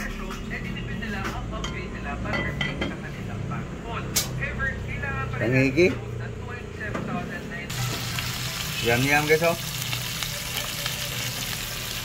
Tangigi. Yum guys, oh.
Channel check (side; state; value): both; identical; correlation 1.00